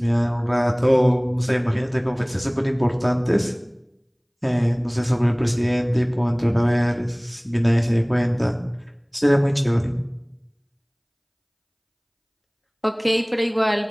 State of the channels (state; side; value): identical; both; correlation 1.00